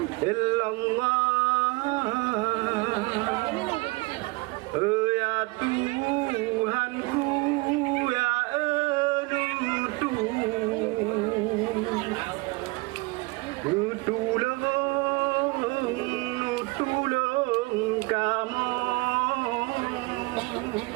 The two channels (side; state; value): left; quieter; 25.5 dB